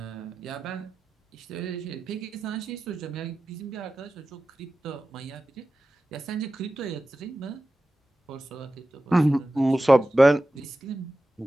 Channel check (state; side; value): normal; both; correlation 0.94